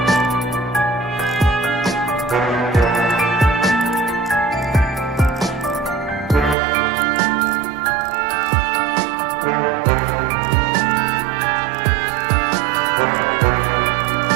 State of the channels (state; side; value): drops out; left; at 6.6 s